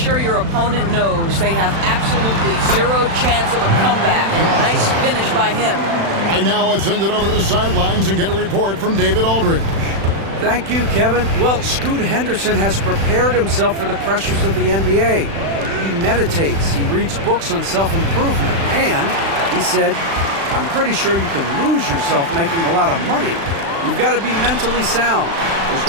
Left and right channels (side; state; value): left; late; 36 ms